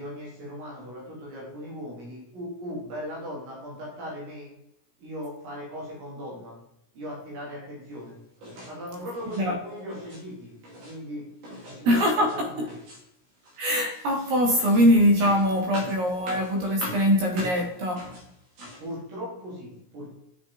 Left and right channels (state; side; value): late; left; 17 ms